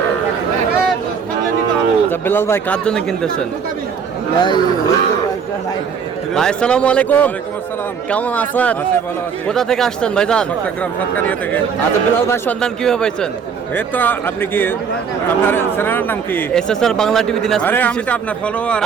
বেলাল ভাই কার জন্য কিনতেছেন? ভাই আসসালামু আলাইকুম। কেমন আছেন? কোথা থেকে আসছেন ভাইজান? আচ্ছা বেলাল ভাই সন্ধান কিভাবে পাইছেন? এই তো আপনি কি, আপনার চ্যানেলের নাম কি? SSR Bangla TV Dinajpur. আরে আমি তো আপনার ফলোয়ার।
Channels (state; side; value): quieter; left; 6.5 dB